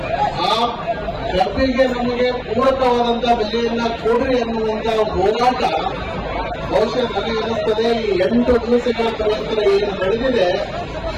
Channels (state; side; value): identical; both; correlation 1.00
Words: ಆ ಕಬ್ಬಿಗೆ ನಮಗೆ ಪೂರಕವಾದಂತ ಬೆಲೆಯನ್ನ ಕೊಡ್ರಿ ಅನ್ನುವಂತ ಹೋರಾಟ ಬಹುಶಃ ನನಗೆ ಅನಿಸ್ತದೆ ಈ 8 ದಿವಸಗಳ ಪ್ರಯತ್ನ ಏನು ನಡೆದಿದೆ